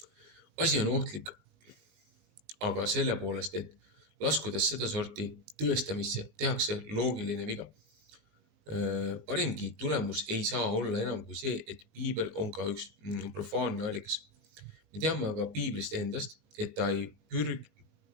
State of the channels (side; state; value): left; late; 19 ms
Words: Asi on ohtlik, aga selle poolest, et laskudes sedasorti tõestamisse, tehakse loogiline viga. Parimgi tulemus ei saa olla enam kui see, et piibel on ka üks profaanne allikas. Me teame aga piiblist endast, et ta ei